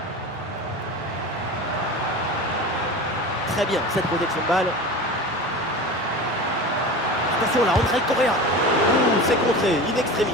Très bien cette protection de balle. Attention là, André Correa. C'est contré, in extremis.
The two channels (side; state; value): both; normal; correlation 0.31